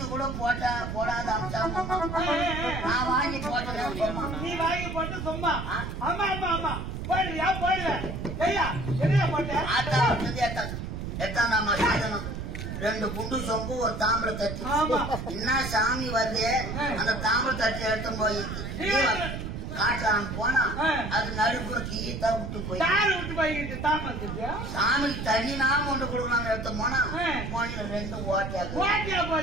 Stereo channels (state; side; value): noise; right; rumble, 5 dB below the sound